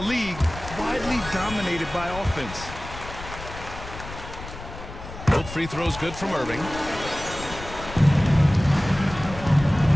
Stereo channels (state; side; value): noise; left; rumble, 12 dB below the sound